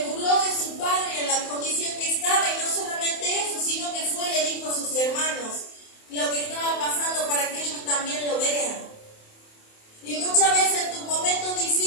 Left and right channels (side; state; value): right; late; 27 ms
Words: burló de su padre en la condición que estaba, y no solamente eso, sino que fue y le dijo a sus hermanos lo que estaba pasando para que ellos también lo vean. Y muchas veces en tus momentos